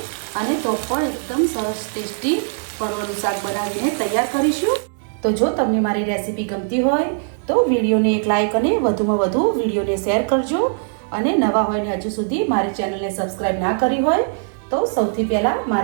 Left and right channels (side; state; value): left; silent; digital silence